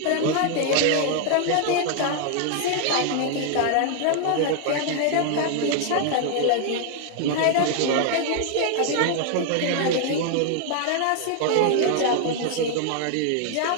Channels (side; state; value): both; different; correlation 0.00